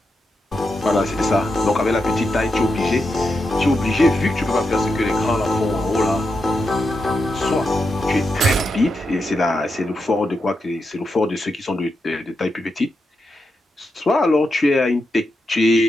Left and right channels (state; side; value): normal; both; correlation 0.86